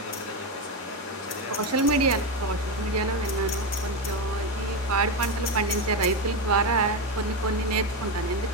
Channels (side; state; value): both; normal; correlation 0.12